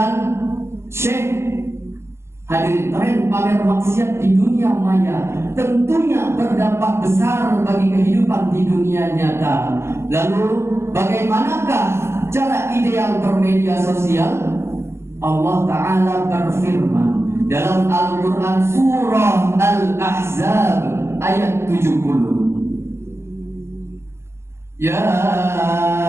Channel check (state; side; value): late; left; 0.13 ms